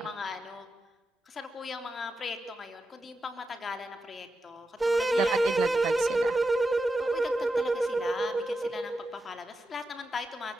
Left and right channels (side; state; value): both; normal; correlation 0.89